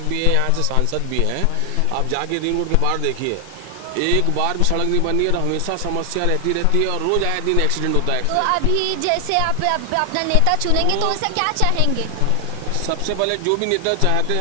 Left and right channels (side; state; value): both; different; correlation 0.00